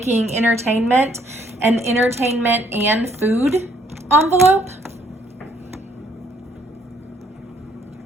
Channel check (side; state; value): both; normal; correlation 0.66